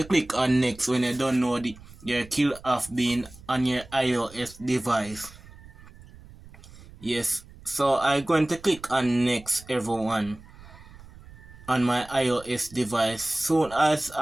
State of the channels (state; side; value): noise; right; rumble, 20 dB below the sound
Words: click on next when you download your Kill of Bean on your iOS device. Yes, so I'm going to click on next, everyone, on my iOS device. Soon as